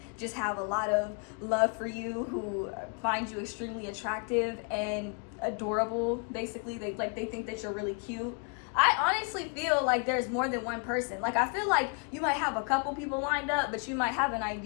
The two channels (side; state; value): right; quieter; 38.2 dB